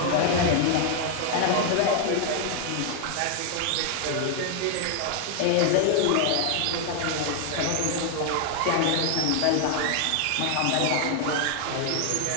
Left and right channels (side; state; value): both; different; correlation 0.00